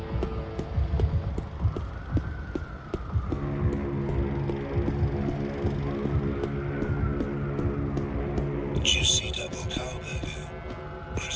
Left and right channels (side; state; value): both; identical; correlation 1.00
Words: Juicy double cow burger,